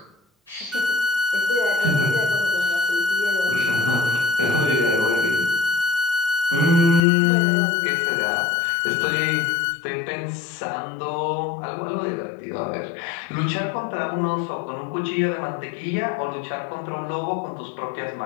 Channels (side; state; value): right; drops out; at 7.1 s